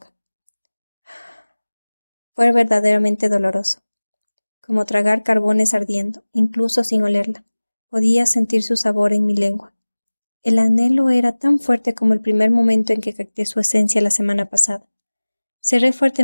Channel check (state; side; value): inverted; both; correlation -1.00